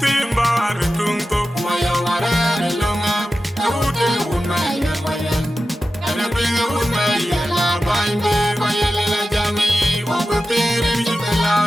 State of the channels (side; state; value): both; normal; correlation 0.93